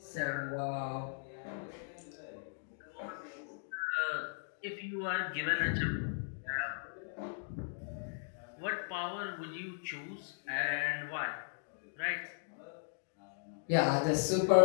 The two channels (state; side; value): silent; right; digital silence